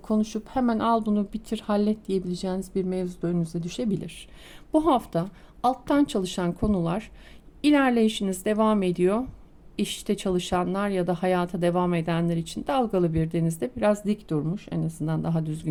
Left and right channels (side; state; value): both; identical; correlation 1.00